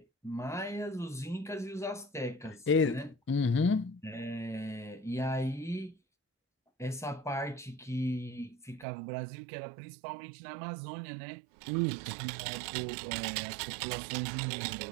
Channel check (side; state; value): left; drops out; at 8.8 s